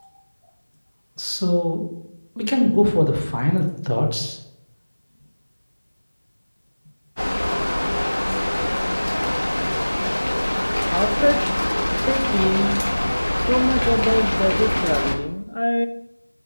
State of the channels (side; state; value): both; inverted; correlation -1.00